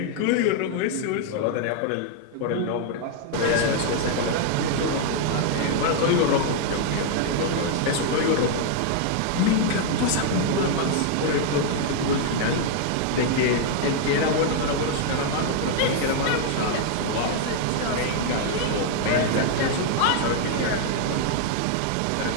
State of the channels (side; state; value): both; different; correlation 0.00